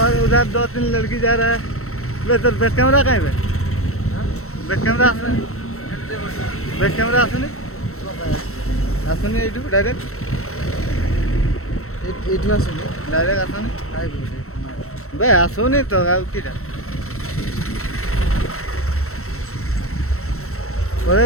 और उधर 2-3 लड़की जा रहा है। वे तो बैक कैमरा कहीं पे बैक कैमरा आसुनी एटू डायरेक्ट आसुनी बे आसुनी तो किटा पढ़े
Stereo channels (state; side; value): late; right; 0.63 ms